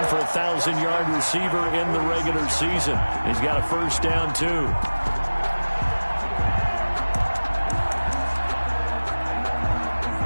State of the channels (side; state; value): both; inverted; correlation -1.00